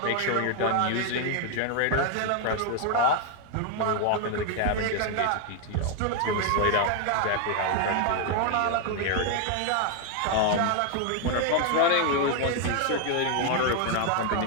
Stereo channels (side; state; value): both; different; correlation 0.00